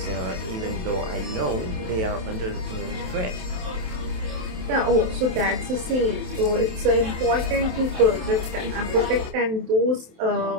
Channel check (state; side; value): late; left; 27 ms